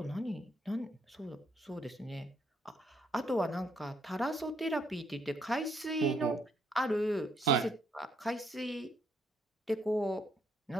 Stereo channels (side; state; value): both; normal; correlation 0.71